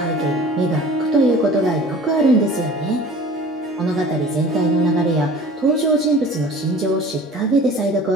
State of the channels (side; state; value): both; normal; correlation 0.44